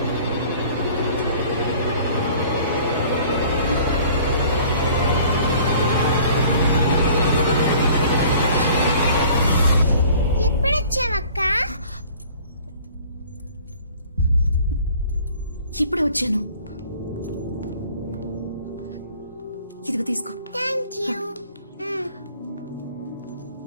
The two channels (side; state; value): both; inverted; correlation -0.50